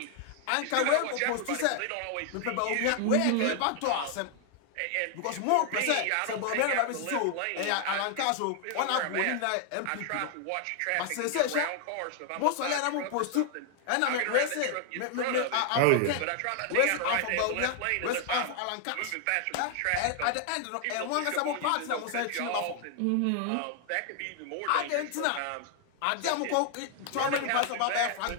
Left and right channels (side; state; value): both; different; correlation 0.00